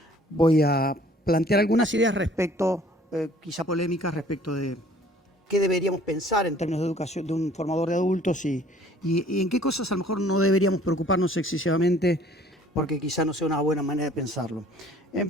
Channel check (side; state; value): both; normal; correlation 0.54